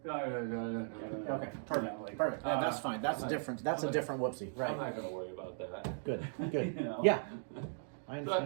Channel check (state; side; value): silent; left; digital silence